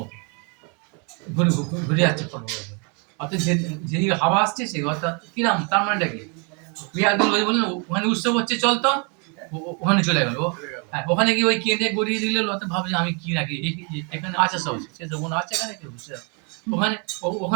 ঘুরে ঘুরে যাচ্ছে অর্থাৎ যেদিকে হাওয়া আসছে সেই অর্থাৎ কিরাম, তার মানেটা কি, একদম ওই বললেন ওখানে উৎসব হচ্ছে চলতো, ওখানে চলে গেল। হ্যাঁ, ওখানে গিয়ে ওই কেঁদে গড়িয়ে দিলে অর্থাৎ ভাবছে আমি কি নাকি এখানে আছে সব, সে তো কোনো আছে এখানে কেউ, ওখানে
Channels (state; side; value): quieter; left; 35.2 dB